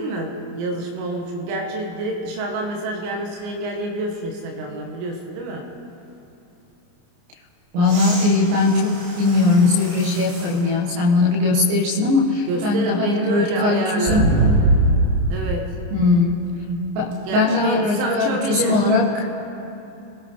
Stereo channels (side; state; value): left; late; 29 ms